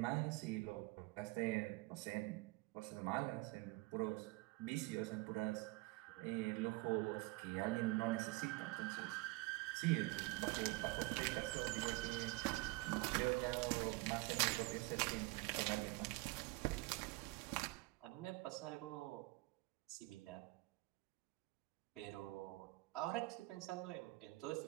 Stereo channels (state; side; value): quieter; left; 23.6 dB